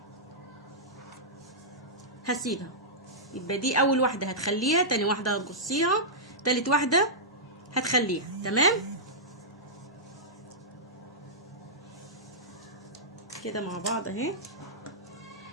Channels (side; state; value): both; normal; correlation -0.13